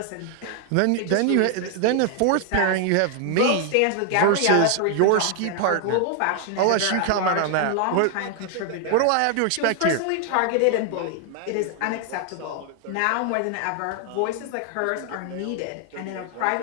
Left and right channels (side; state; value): both; different; correlation 0.00